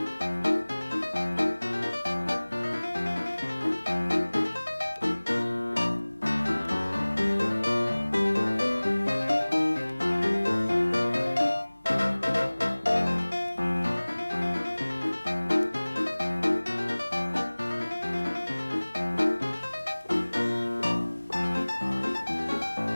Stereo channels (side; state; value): both; inverted; correlation -1.00